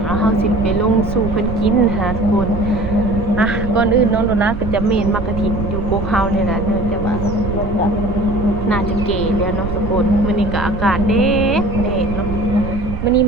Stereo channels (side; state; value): right; noise; rumble, 8 dB below the sound